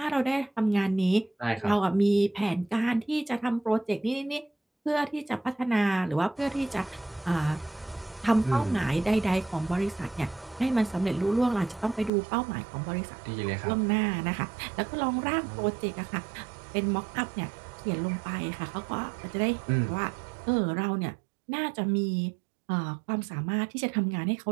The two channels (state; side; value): drops out; left; at 12.1 s